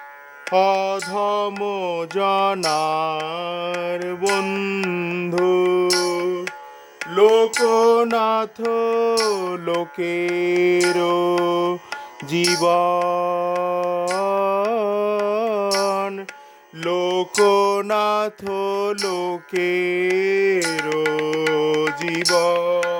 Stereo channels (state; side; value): identical; both; correlation 1.00